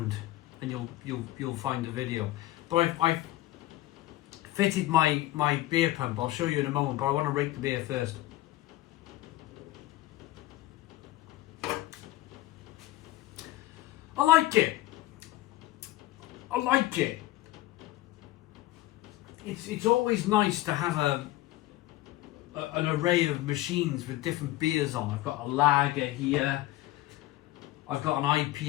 and you'll find the video. But I've fitted my beer pump. I'll show you in a moment, but I want to rate the beer first. I like it. I like it. It's always nice to have an array of machines with different beers on. I've got a lager here. I've got an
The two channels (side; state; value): right; quieter; 16.5 dB